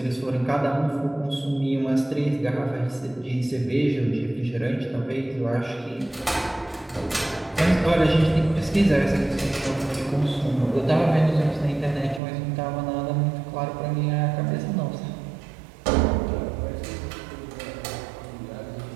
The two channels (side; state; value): left; drops out; at 12.2 s